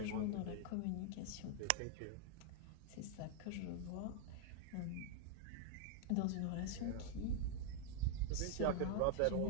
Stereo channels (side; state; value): both; different; correlation 0.00